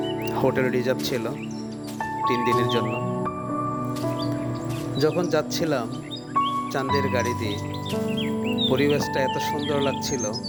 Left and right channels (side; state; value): both; identical; correlation 1.00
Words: হোটেল রিজার্ভ ছিল 3 দিনের জন্য। যখন যাচ্ছিলাম চাঁদের গাড়ি দিয়ে, পরিবেশটা এত সুন্দর লাগছিল,